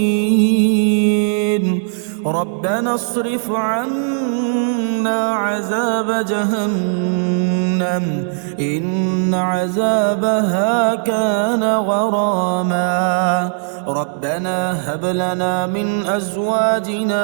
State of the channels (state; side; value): silent; left; 68 dB below the other